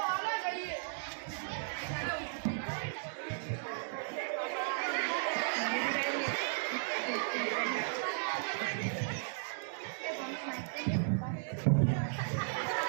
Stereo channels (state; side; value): silent; left; digital silence